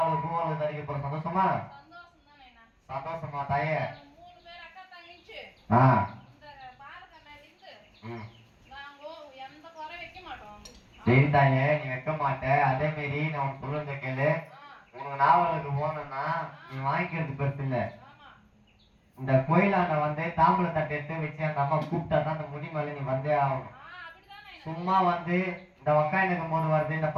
பூவல் தரிக்க போற சந்தோஷமா சந்தோஷமா தாயே? சரி தாயே, நீ வைக்க மாட்ட. அதே மாரி நான் உனக்கு சொல்லுங்க கேளு. உனக்கு நாவலுக்கு போனோம்னா நீ வாங்கிக்கிறது பெருசு இல்ல. இந்த கோயிலாண்ட வந்து தாம்பூல தட்டை எடுத்து வச்சு அந்த அம்மா கூப்பிட்டா தான் அந்த முடி மேல நீ வந்தே ஆகணும். சும்மா வந்து இந்த வக்காயனுக்கும் போது வருது, இந்த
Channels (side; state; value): both; identical; correlation 1.00